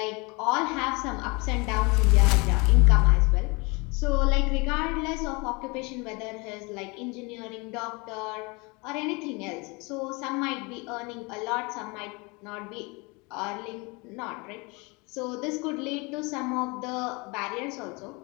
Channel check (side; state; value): right; quieter; 27.8 dB